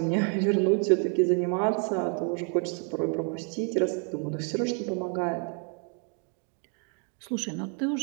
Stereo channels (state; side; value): quieter; left; 39.5 dB